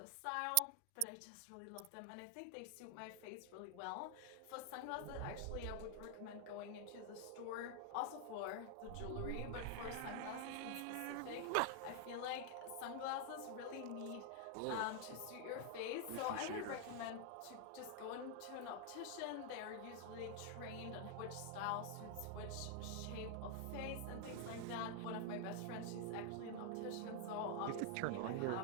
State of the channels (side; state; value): both; different; correlation 0.00